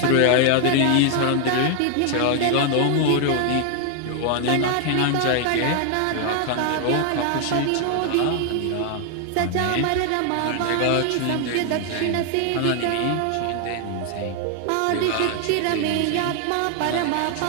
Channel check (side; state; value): both; different; correlation 0.00